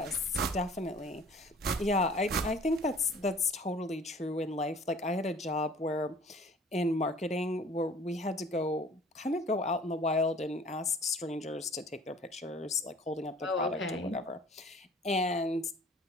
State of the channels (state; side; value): normal; both; correlation 0.50